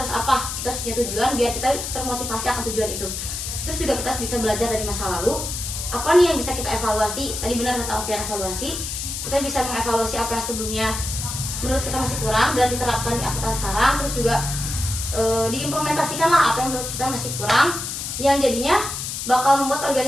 apa. Kita harus punya tujuan biar kita termotivasi akan tujuan itu. Terus juga kita bisa belajar dari masa lalu. Apa nih yang bisa kita evaluasi? Tadi benar kata Alfian, evaluasi. Kita bisa mengevaluasi apa yang sebelumnya menurut kita masih kurang dan diterapkan di angkatan sekarang. Terus juga diimplementasikan lah apa yang menurut kita masih kurang, yang jadinya bakal membuat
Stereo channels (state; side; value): noise; left; hiss, 5 dB below the sound